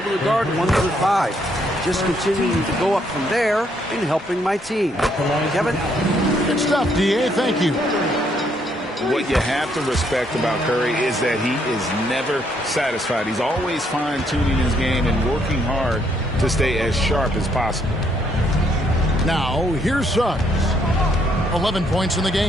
to guard 1 through 5. Just continuing to go up from there and helping my team. Kevin? Good stuff, D.A. Thank you. What you have to respect about Curry is that he is never satisfied. He's always fine-tuning his game and working hard to stay as sharp as possible. Now, here's Suggs. 11 points in the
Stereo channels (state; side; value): normal; both; correlation 0.71